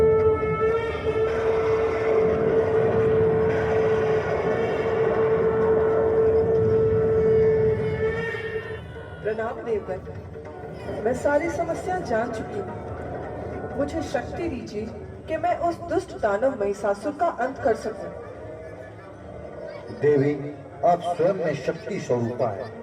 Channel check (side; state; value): both; identical; correlation 1.00